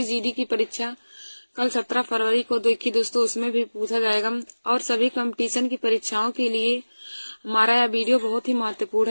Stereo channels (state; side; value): inverted; both; correlation -1.00